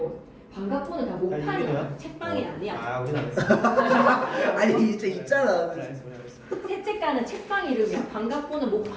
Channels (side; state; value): both; identical; correlation 1.00